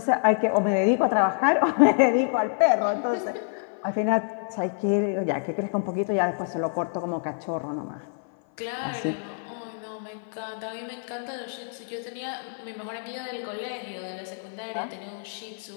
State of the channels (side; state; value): right; silent; 56 dB below the other